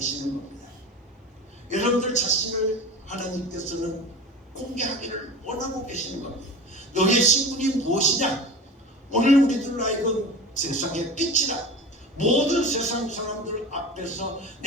겁니다. 여러분들 자신을 하나님께서는 공개하기를 원하고 계시는 겁니다. 너희의 신분이 무엇이냐? 오늘 우리들 하여금 세상의 빛이다. 모든 세상 사람들 앞에서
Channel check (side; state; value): both; normal; correlation 0.33